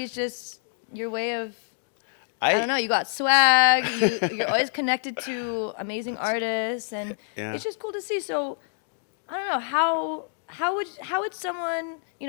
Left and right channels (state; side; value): silent; right; digital silence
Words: it's just your way of, I don't I know, you got swag, you're always connected to amazing artists, and yeah. it's just cool to see. So I don't know how would someone, you